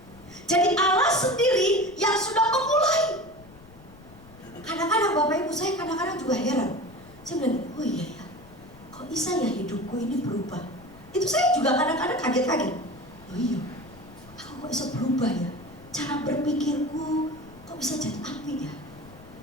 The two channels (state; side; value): noise; left; rumble, 22 dB below the sound